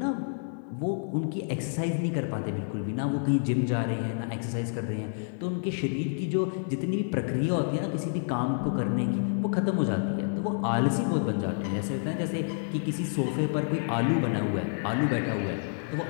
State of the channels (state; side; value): silent; right; digital silence